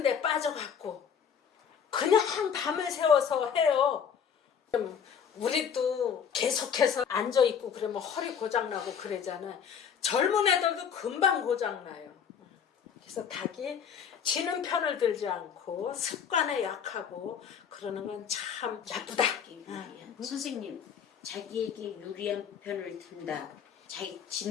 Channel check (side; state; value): right; quieter; 7.4 dB